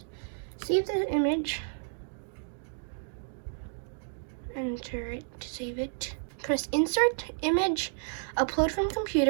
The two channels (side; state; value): left; silent; digital silence